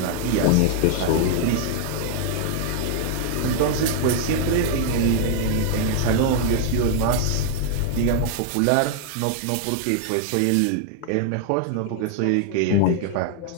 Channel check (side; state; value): both; different; correlation -0.01